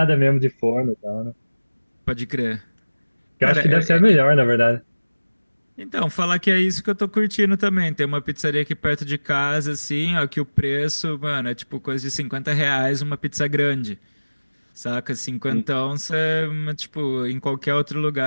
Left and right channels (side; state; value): both; inverted; correlation -1.00